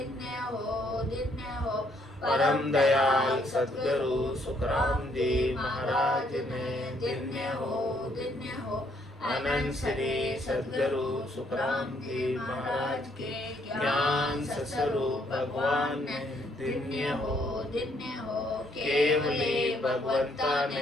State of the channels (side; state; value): both; normal; correlation 0.69